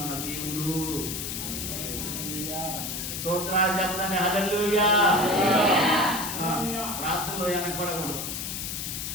దేవుడు. స్తోత్రాలు చెప్తానే హల్లెలూయా. ప్రార్థనలో వెనకబడకూడదు.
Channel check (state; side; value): noise; left; hiss, 4 dB below the sound